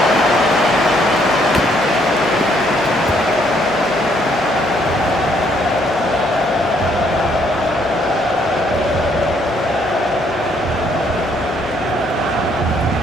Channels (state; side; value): noise; left; hum, 21 dB below the sound